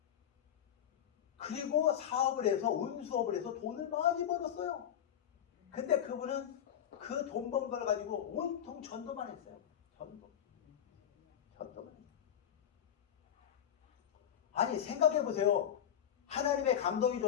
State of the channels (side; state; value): right; quieter; 9.7 dB